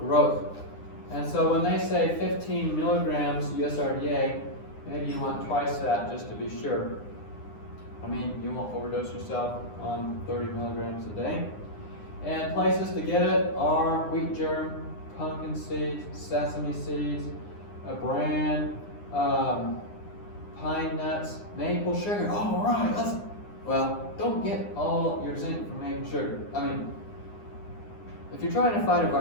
And so when they say 15 milligrams USRDA, maybe you want twice that just to be sure. I mean, you won't overdose yourself on 30 milligrams a day. And places to get it are wheat germ, pumpkin seeds, sesame seeds, bran, pine nuts, maple sugar. All right, well, don't get all your zinc from maple sugar. I mean, if you're trying to fight a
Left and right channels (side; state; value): right; late; 9.8 ms